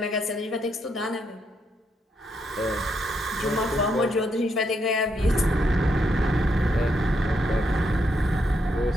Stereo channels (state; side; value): normal; both; correlation 0.78